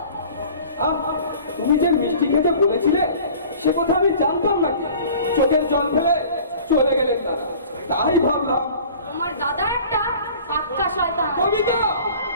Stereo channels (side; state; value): both; inverted; correlation -0.46